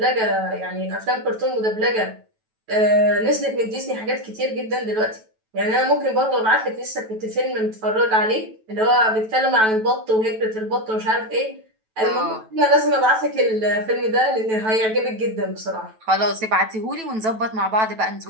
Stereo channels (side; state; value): left; late; 9.1 ms